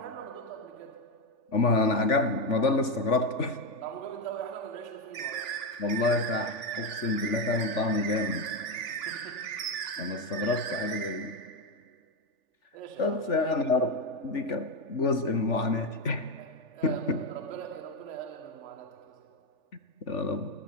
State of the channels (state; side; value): late; right; 3.4 ms